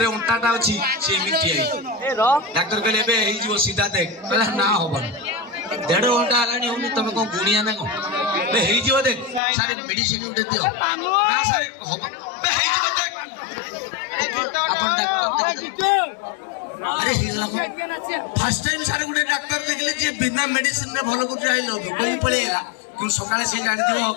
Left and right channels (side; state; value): right; drops out; at 9.4 s